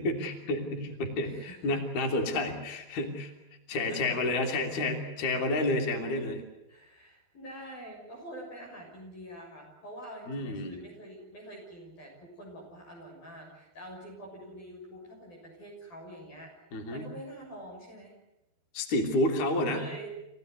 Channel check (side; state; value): right; late; 12 ms